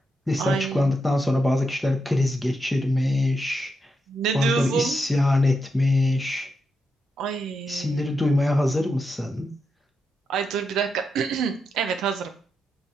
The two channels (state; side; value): normal; both; correlation 0.84